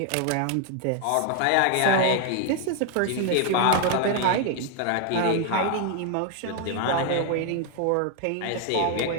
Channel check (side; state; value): both; different; correlation 0.00